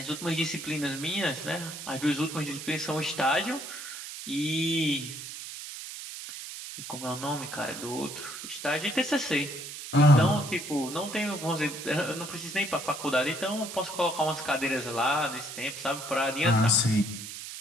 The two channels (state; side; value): noise; right; hiss, 9 dB below the sound